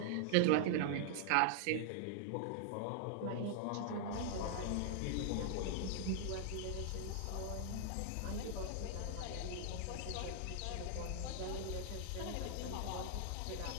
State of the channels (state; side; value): different; both; correlation 0.00